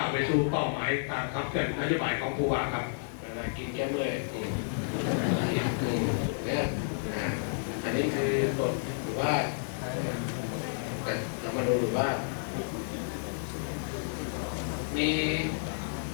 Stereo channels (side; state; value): right; silent; 57 dB below the other